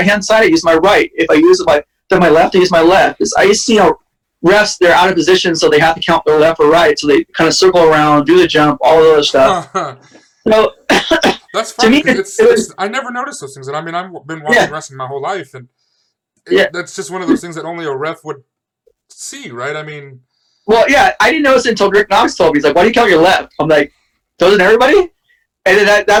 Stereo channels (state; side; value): identical; both; correlation 1.00